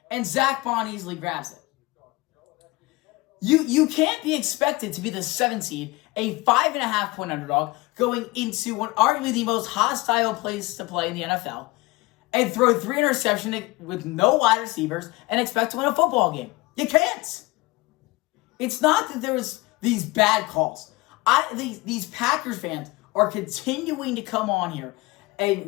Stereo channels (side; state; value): right; quieter; 22.0 dB